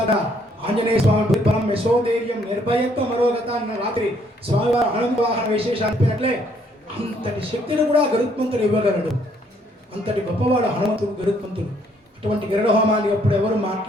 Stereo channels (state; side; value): normal; both; correlation 0.67